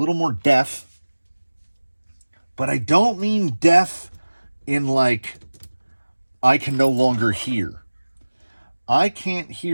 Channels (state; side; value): inverted; both; correlation -1.00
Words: deaf. But I don't mean deaf in like I can no longer hear. I can't